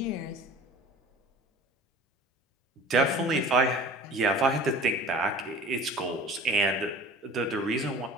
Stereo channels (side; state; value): both; normal; correlation 0.42